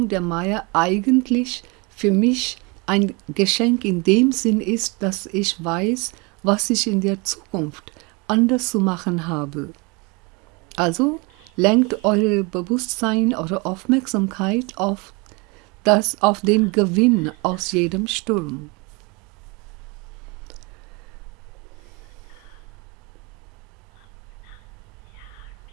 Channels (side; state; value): left; quieter; 28.3 dB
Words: der Maya eigentlich für mich ein Geschenk in dem Sinn ist, dass ich weiß, was ich in der Zukunft anders zu machen habe. Also lenkt euer Bewusstsein, eure Aufmerksamkeit auf den Gewinn aus jedem Sturm.